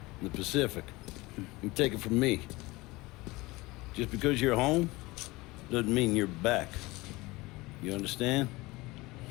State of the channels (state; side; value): quieter; right; 21.7 dB